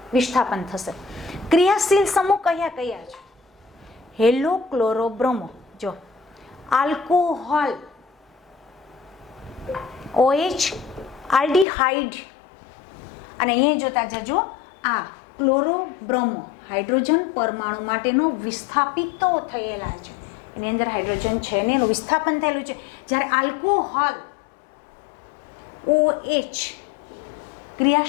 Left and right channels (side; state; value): right; drops out; at 11.7 s